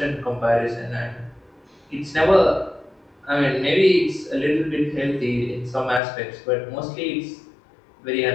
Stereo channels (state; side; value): drops out; right; at 6.0 s